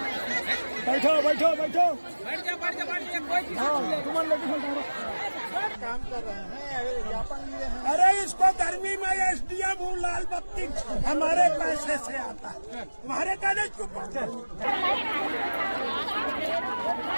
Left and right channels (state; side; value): inverted; both; correlation -1.00